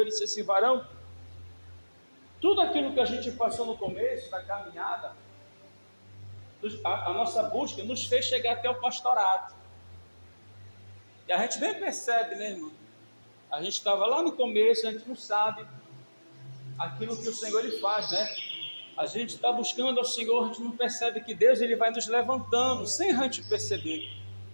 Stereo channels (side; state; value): both; inverted; correlation -1.00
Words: disse assim: varão, tudo aquilo que a gente passou no começo da caminhada, a nossa busca nos fez chegar até o pastorado. E a gente nem percebe, né, irmão? A gente estava lá no começo, a gente não sabe aquilo que o Senhor ele faz, né? A gente está buscando ao Senhor, a gente não percebe que Deus ele vai nos levantando, sem a gente perceber.